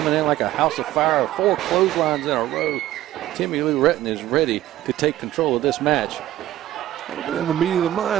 in like a house of fire, 4 clotheslines in a row. Timmy Lou Retton is ready to take control of this match. In the meeting of the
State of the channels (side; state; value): left; quieter; 14.2 dB